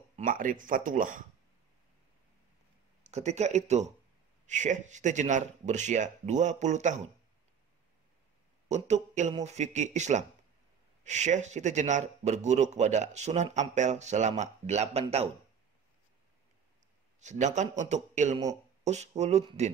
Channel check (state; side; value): quieter; left; 7.3 dB